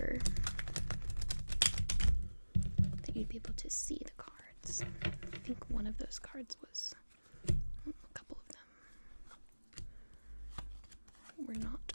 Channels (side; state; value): both; inverted; correlation -1.00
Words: that you'd be able to see the cards. I think one of those cards was, a couple of them were